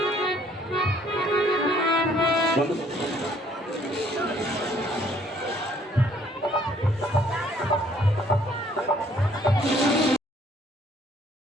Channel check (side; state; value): both; normal; correlation 0.62